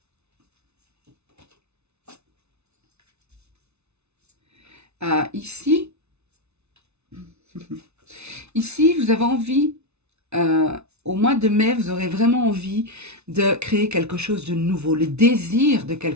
Ici, vous avez envie, au mois de mai, vous aurez vraiment envie de créer quelque chose de nouveau, le désir de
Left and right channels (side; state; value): left; late; 0.81 ms